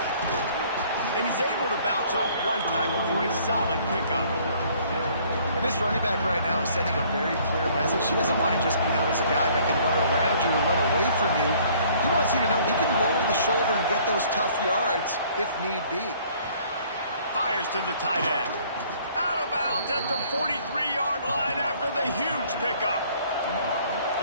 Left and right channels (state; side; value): inverted; both; correlation -0.58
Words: And he's able to bounce off one tackle for a solid pickup. And this running back right now is sending a very clear message. He doesn't want to just be known as a guy that can run around you or run away from you. He wants you to know he can lower the shoulder and get those tough yards if need be. Fires to the tight end. Out of bounds at the 43-yard line after the huge pickup.